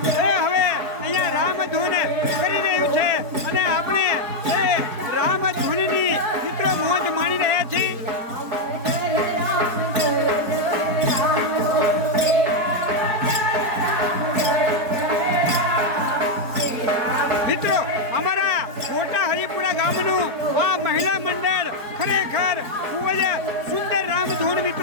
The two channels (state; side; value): late; left; 4.5 ms